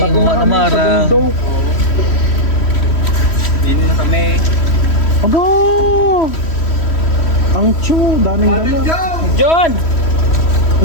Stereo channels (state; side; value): late; right; 3.1 ms